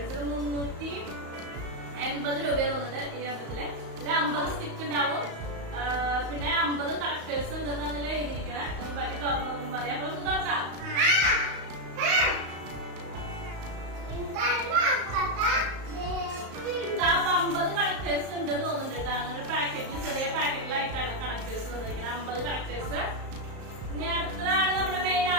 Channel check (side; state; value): left; late; 35 ms